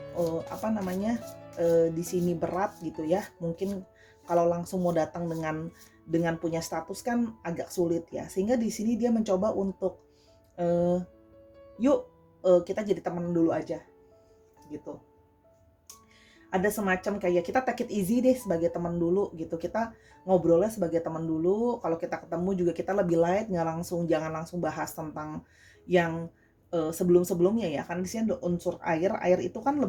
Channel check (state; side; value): identical; both; correlation 1.00